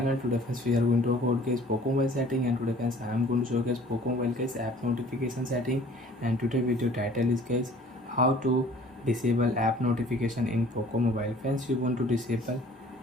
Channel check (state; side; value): normal; both; correlation 0.51